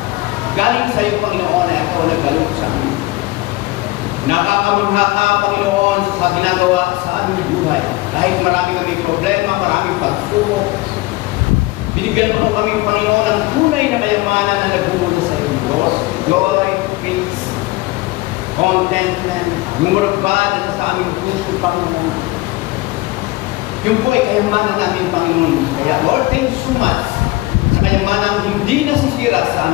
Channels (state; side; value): quieter; right; 20.4 dB